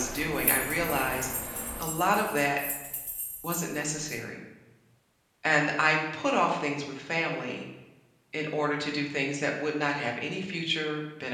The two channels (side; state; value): both; identical; correlation 1.00